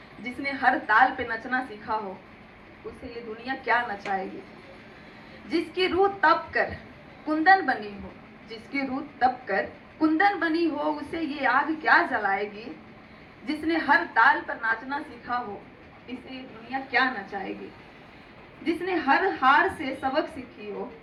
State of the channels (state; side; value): identical; both; correlation 1.00